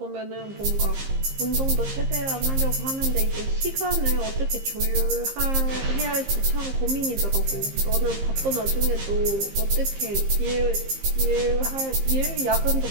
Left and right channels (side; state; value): left; late; 15 ms